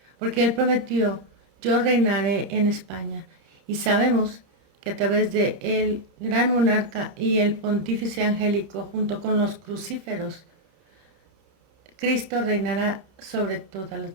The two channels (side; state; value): left; late; 30 ms